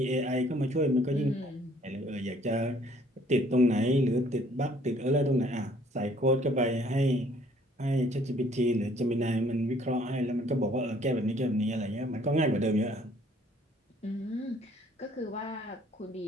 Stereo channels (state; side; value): normal; both; correlation 0.60